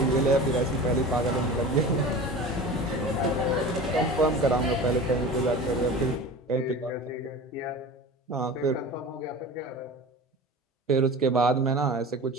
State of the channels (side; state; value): both; normal; correlation 0.35